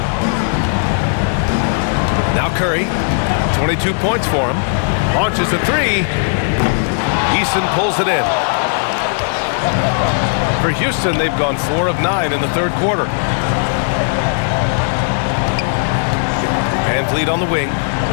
Now Curry, 22 points for him. Launches a three. Eason pulls it in. For Houston, they've gone 4 of 9 in the third quarter. Van Vliet on the wing.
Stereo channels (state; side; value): silent; right; digital silence